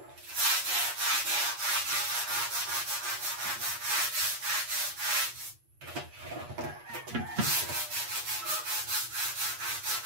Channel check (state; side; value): late; left; 8.4 ms